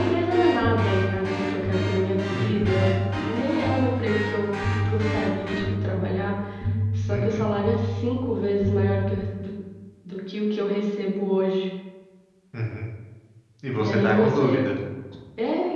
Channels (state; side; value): identical; both; correlation 1.00